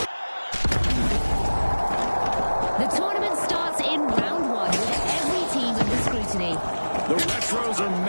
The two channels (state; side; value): inverted; both; correlation -1.00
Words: The tournament starts in round one with every team under scrutiny. The retros are